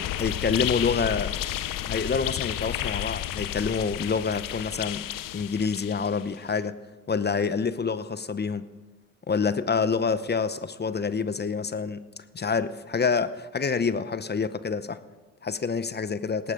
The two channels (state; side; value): quieter; right; 5.6 dB